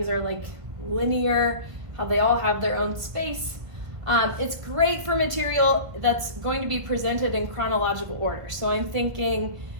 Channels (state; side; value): late; left; 1.5 ms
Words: are like linear, how they all have their own space. It's great for material that's going to be presented in chronological order. So I'm thinking